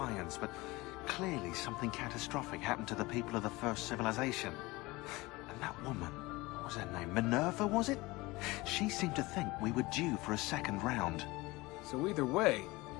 but clearly something catastrophic happened to the people of the first civilization. And that woman, what was her name? Minerva, was it? She seemed to think we were due for a second round. So either way,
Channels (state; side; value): quieter; right; 21.6 dB